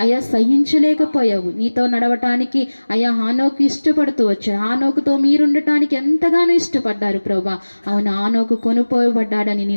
అయ్యా సహించలేకపోయావు. నీతో నడవటానికి అయ్యా హానోకు ఇష్టపడుతూ వచ్చావు. హానోకుతో మీరుండటానికి ఎంతగానో ఇష్టపడ్డారు ప్రభా. అవును, హానోకు కొనుపోయబడ్డాడని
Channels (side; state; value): both; inverted; correlation -1.00